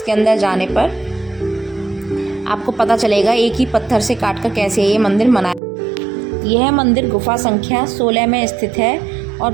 अंदर जाने पर आपको पता चलेगा एक ही पत्थर से काटकर कैसे ये मंदिर बनाया। यह मंदिर गुफा संख्या 16 में स्थित है और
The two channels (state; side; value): drops out; left; at 5.6 s